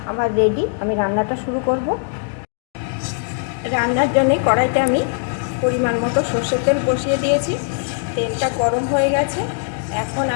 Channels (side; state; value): right; silent; digital silence